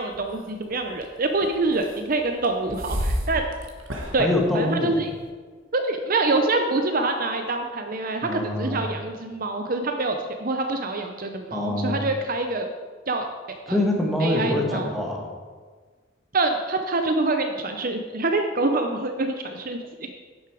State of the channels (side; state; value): both; normal; correlation 0.19